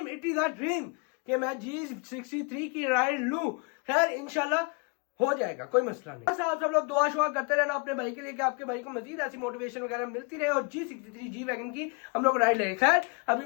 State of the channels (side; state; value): right; quieter; 31.0 dB